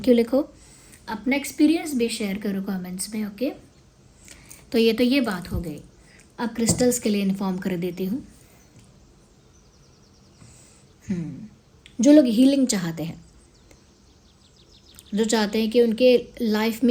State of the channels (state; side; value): identical; both; correlation 1.00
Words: यू लिखो, अपना एक्सपीरियंस भी शेयर करो कमेंट्स में। ओके, तो ये बात हो गई। अब क्रिस्टल्स के लिए इन्फॉर्म कर देती हूँ। जो लोग हीलिंग चाहते हैं, जो चाहते हैं कि उनके लाइफ